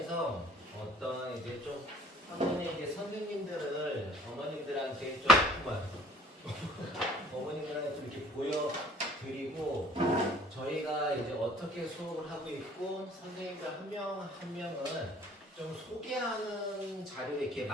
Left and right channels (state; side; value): normal; both; correlation 0.53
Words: 어떤 이제 좀 학원의 이제 선생님들을 어머님들한테 좀 어머님들한테 좀 이렇게 보여드리고 저희가 이제 어떻게 수업을 하고 있고 선생님들 한 명 한 명은 좀 소개하는 자료를 이렇게